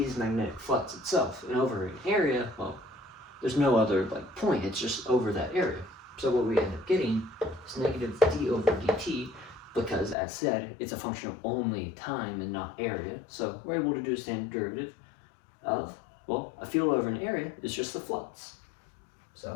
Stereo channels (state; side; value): drops out; right; at 10.2 s